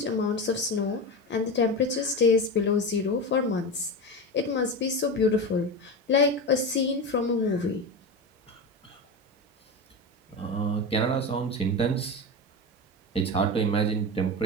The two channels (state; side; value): normal; both; correlation 0.22